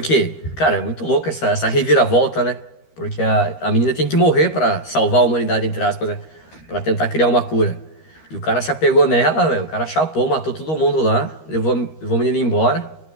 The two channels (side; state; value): right; late; 13 ms